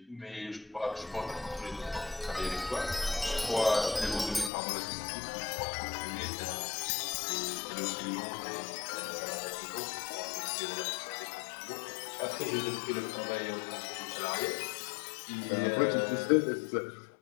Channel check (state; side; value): drops out; right; at 4.5 s